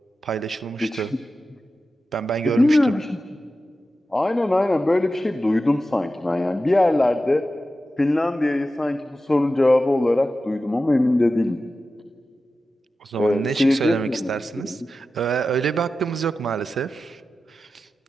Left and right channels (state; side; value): normal; both; correlation 0.93